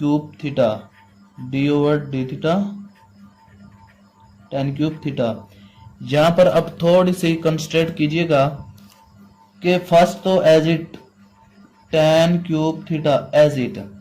theta D over D theta tan cube theta. यहाँ पर अब थोड़ी सी कंस्ट्रेंट कीजिएगा कि फर्स्ट तो as it tan cube theta as it,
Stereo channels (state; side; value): identical; both; correlation 1.00